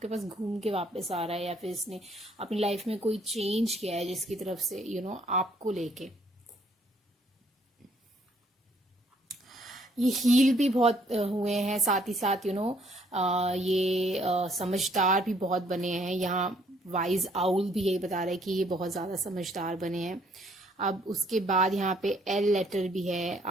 पास घूम के वापस आ रहा है, या फिर इसने अपनी लाइफ में कोई चेंज किया है जिसकी तरफ से आपको लेके ये हील भी बहुत हुए हैं, साथ ही साथ ये समझदार भी बहुत बने हैं। यहाँ वाइज आउल भी यही बता रहा है कि ये बहुत ज़्यादा समझदार बने हैं। अब उसके बाद यहाँ पे एल लेटर भी है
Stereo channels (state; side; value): normal; both; correlation 0.65